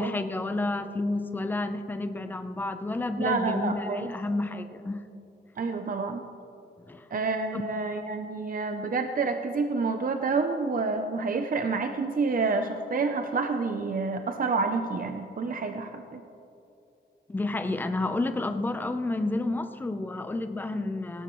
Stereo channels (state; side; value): normal; both; correlation 0.50